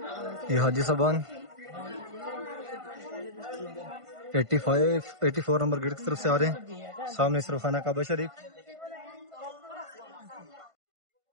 یہ حاجی صاحبان 84 نمبر گیٹ کی طرف سے آ رہے ہیں. سامنے اس طرف خانہ کعبہ شریف،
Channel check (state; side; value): late; left; 1.5 ms